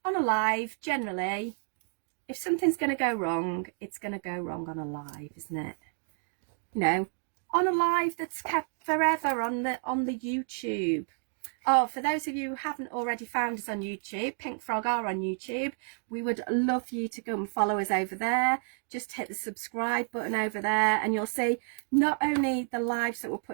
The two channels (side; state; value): left; silent; 56 dB below the other